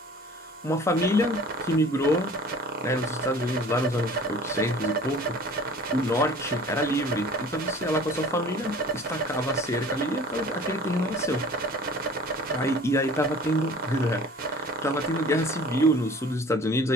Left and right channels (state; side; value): normal; both; correlation 0.46